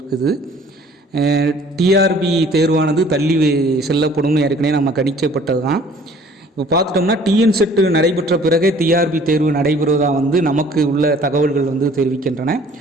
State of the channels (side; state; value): both; normal; correlation 0.53